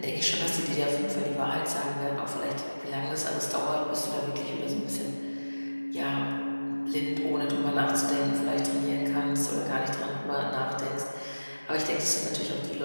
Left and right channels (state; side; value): inverted; both; correlation -1.00